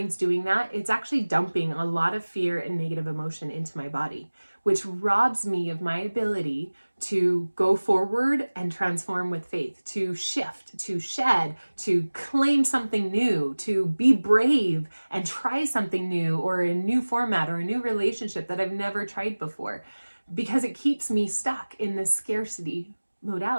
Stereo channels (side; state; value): both; inverted; correlation -1.00